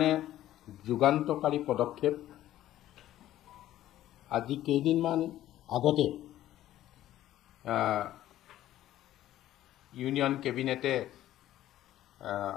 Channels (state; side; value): quieter; right; 13.5 dB